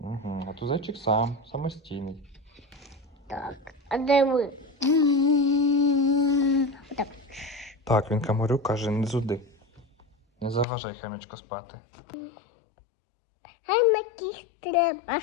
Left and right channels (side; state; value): right; drops out; at 10.7 s